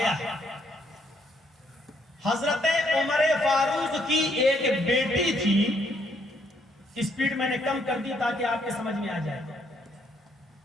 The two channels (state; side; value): normal; both; correlation 0.70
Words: है, हजरत उमर फारूक की एक बेटी थी। स्पीड मैंने कम कर दी ताकि आपके समझ में आ जाए।